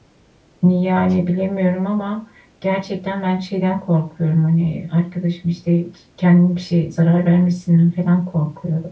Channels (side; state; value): both; identical; correlation 1.00